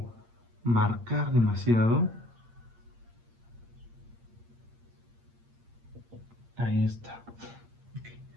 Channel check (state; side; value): late; left; 8.7 ms